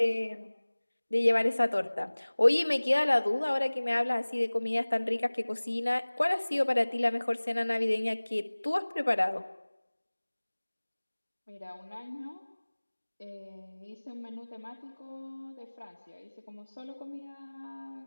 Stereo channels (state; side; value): inverted; both; correlation -1.00